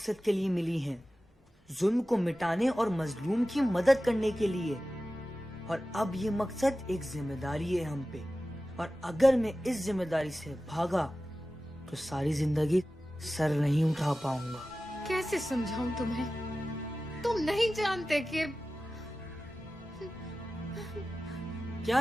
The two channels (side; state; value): both; normal; correlation 0.95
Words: के लिए मिली हैं, जुल्म को मिटाने और मजलूम की मदद करने के लिए। और अब ये मकसद एक जिम्मेदारी है हम पे, और अगर मैं इस जिम्मेदारी से भागा तो सारी जिंदगी सर नहीं उठा पाऊंगा। कैसे समझाऊं तुम्हें? तुम नहीं जानते कि